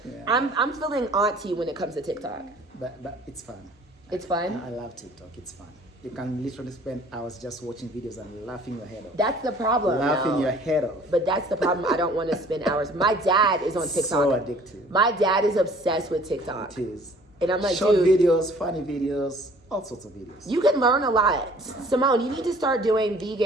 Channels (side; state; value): both; normal; correlation 0.53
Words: Yeah. I'm feeling auntie when it comes to TikTok. But it's fun. It's fun? I love TikTok. It's fun. You can literally spend hours just watching videos and laughing your head off. That's the problem. Laughing your head off. But that's the problem. I don't want to spend hours. My dad is on TikTok. So addictive. My dad is obsessed with TikTok. It is. And I'm like, short dude, videos, funny videes, all sorts of videos. You can learn a lot. Simone, you need to start doing